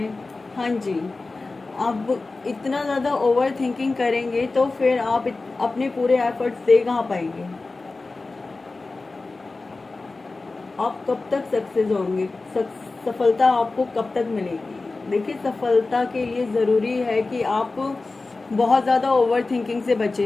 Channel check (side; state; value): right; quieter; 3.5 dB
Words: हैं। हाँ जी, अब इतना ज़्यादा ओवर थिंकिंग करेंगे तो फिर आप अपने पूरे एफर्ट्स दे कहाँ पाएंगे? आप कब तक सक्सेस होंगे? सफलता आपको कब तक मिलेगी? देखिए, सफलता के लिए ज़रूरी है कि आप बहुत ज़्यादा ओवर थिंकिंग से